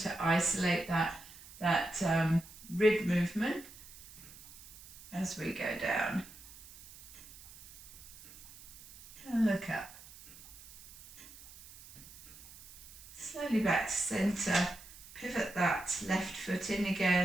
isolate that rib movement as we go down. And look up. Slowly back to centre, pivot that left foot in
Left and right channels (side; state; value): right; noise; hiss, 18 dB below the sound